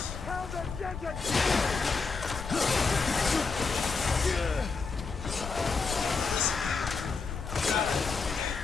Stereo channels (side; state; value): right; quieter; 4.7 dB